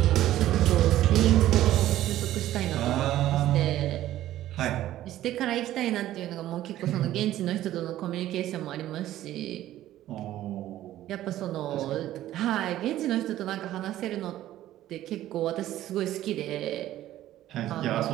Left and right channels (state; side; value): quieter; left; 13.7 dB